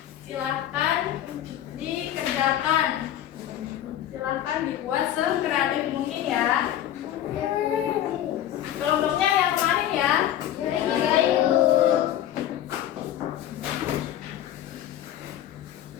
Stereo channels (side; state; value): right; quieter; 11.8 dB